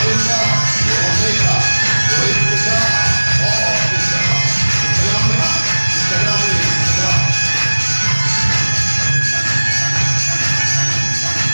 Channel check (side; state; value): both; inverted; correlation -1.00